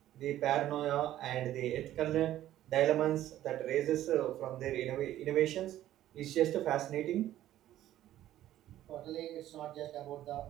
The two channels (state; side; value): quieter; left; 13.2 dB